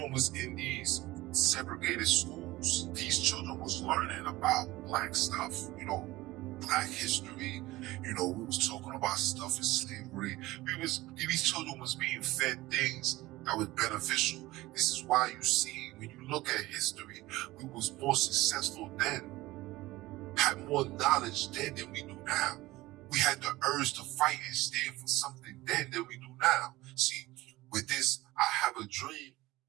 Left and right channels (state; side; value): quieter; left; 18.7 dB